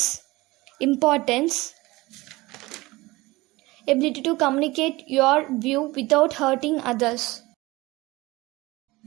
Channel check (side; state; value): left; quieter; 20.7 dB